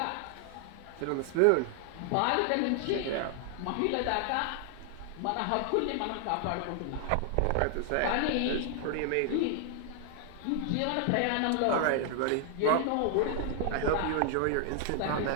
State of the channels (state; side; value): different; both; correlation 0.00